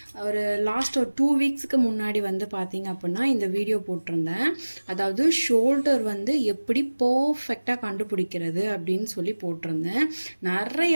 லாஸ்ட் ஒரு 2 வீக்ஸுக்கு முன்னாடி வந்து பார்த்திங்க அப்படின்னா இந்த வீடியோ போட்டிருந்தேன். அதாவது ஷோல்டர் வந்து எப்படி பர்ஃபெக்டாக கண்டுபிடிக்கிறது அப்படின்னு சொல்லி போட்டிருந்தேன்.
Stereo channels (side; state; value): both; inverted; correlation -1.00